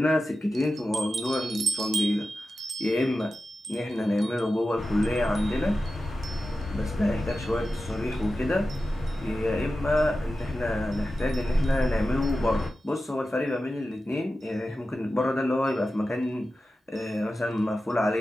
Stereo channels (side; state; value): both; normal; correlation 0.93